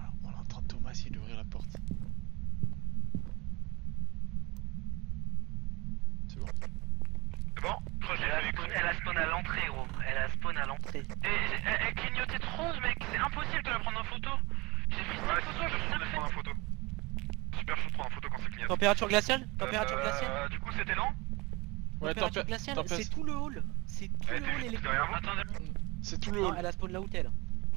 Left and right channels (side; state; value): left; quieter; 24.0 dB